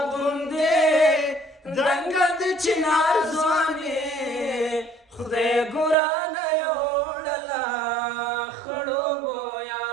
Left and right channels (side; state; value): left; drops out; at 6.0 s